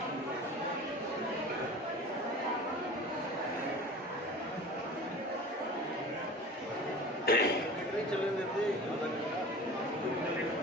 चले देते आधा घंटा,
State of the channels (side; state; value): both; normal; correlation 0.38